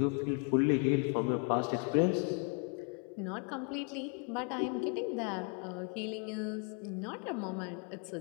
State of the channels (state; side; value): quieter; right; 37.3 dB